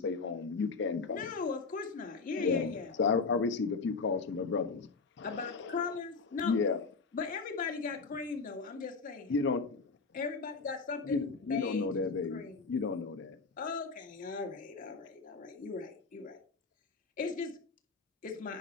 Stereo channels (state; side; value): quieter; right; 4.5 dB